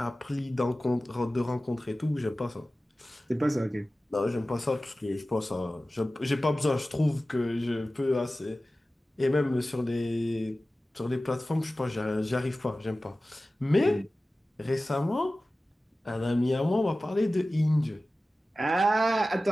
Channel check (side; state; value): both; normal; correlation 0.96